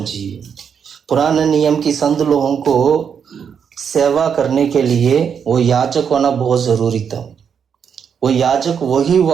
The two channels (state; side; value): quieter; left; 7.2 dB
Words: पुराने नियम की संत लोगों को सेवा करने के लिए वो याजक होना बहुत जरूरी था। वो याजक वही